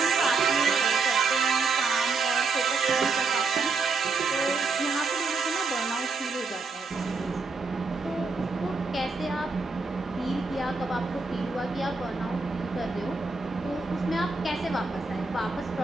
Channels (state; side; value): quieter; left; 4.2 dB